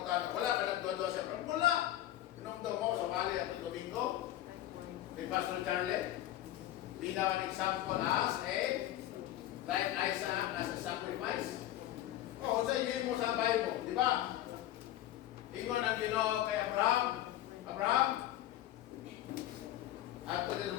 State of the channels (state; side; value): quieter; right; 13.6 dB